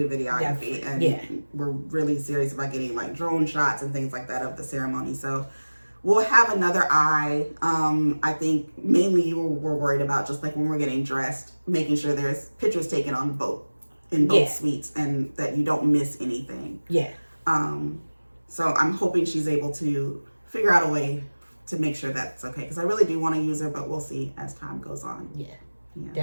videography, and we're really serious about getting like drone shots and things like that of the ceremony. So we'll have another eye. I think mainly we're worried about just like when we're getting dressed, making sure there's pictures taken on both in both suites and that you don't miss anything. Yeah. So I'm hoping she's able to figure out a way to make sure that's okay, because I really do want to use her, but we'll see as time goes on. Yeah.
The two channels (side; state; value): both; inverted; correlation -1.00